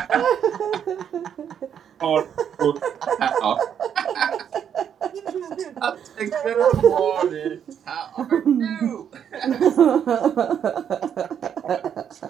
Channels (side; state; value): left; quieter; 8.6 dB